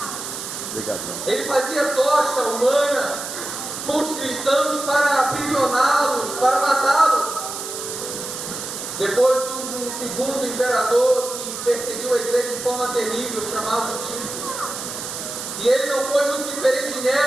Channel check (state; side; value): noise; right; hiss, 7 dB below the sound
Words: Ele fazia tocha humana com os cristãos para aprisioná-los, para matá-los. Depois surge um segundo imperador que perseguiu a igreja de forma terrível, chamado Tito. E ele não foi muito diferente de